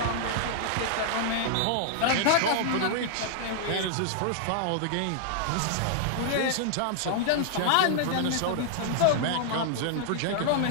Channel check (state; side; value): different; both; correlation -0.01